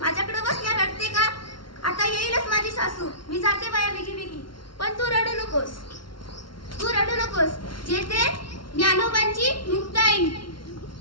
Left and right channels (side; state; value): right; late; 0.73 ms